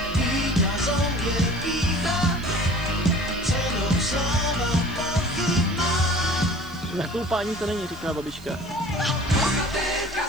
Na koupání to není, říká babička.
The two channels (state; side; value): noise; right; hiss, 24 dB below the sound